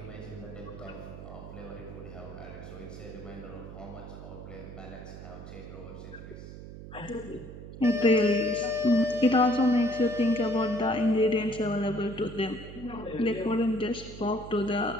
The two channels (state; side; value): noise; right; hum, 13 dB below the sound